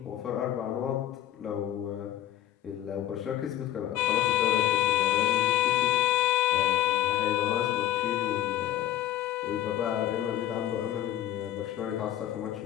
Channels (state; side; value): quieter; right; 12.7 dB